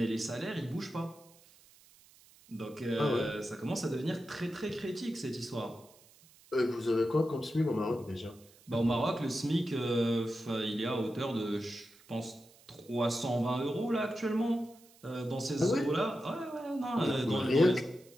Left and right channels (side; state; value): right; noise; hiss, 26 dB below the sound